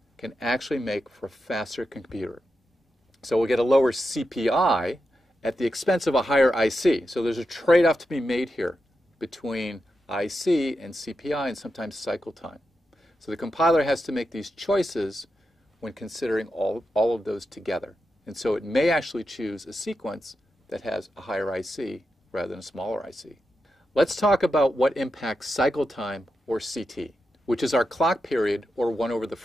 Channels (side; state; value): both; normal; correlation 0.88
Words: can actually make for a faster computer. So we'll get a lower CPI at the expense of a higher IC. So there's a trade-off to be made here between IC and CPI and sometimes cycle time. So the compiler has to make these choices when considering all of those together. And so it may actually choose a sequence that has a higher IC rather than a smaller IC. Let's talk about what impacts cycle time, or CT, which is our clock period, or 1 over the